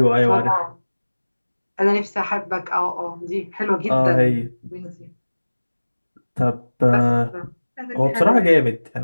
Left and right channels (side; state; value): both; inverted; correlation -1.00